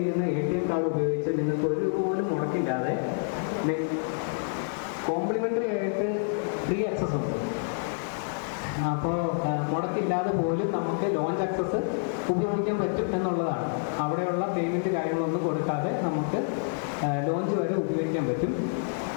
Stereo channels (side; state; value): right; silent; digital silence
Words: ATM കാർഡ് ഉപയോഗിച്ച് നിങ്ങൾക്ക് ഒരു രൂപ പോലും മുടക്കില്ലാതെ കോംപ്ലിമെൻ്ററി ആയിട്ട് ഫ്രീ ആക്സസ് ഉണ്ട്. അപ്പോൾ മുടക്കില്ലാതെ പോലും നമുക്ക് ലോഞ്ച് ആക്സസ് ഉപയോഗിക്കാൻ പറ്റും എന്നുള്ളതാണ്. അവിടെയുള്ള പേയ്മെൻറ്റ് കാര്യങ്ങളൊന്നും കൊടുക്കാതെ നമുക്ക് ലോഞ്ച് വരെ ഉപയോഗിക്കാൻ പറ്റും.